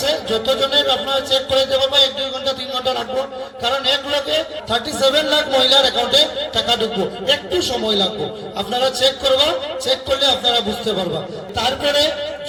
যতজনের আপনারা চেক করে দেবো, 1-2 ঘন্টা 3 ঘন্টা রাখবো, কারণ এক লোকে 37 লাখ মহিলার অ্যাকাউন্টে টাকা ঢুকবো, একটু সময় লাগবো। আপনারা চেক করবা, চেক করলে আপনারা বুঝতে পারবা। তারপরে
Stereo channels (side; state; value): both; identical; correlation 1.00